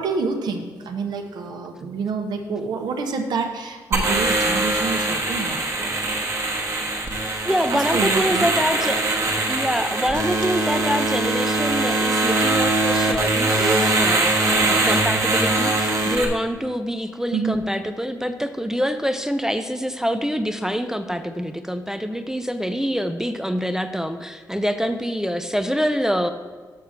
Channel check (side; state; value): both; normal; correlation 0.60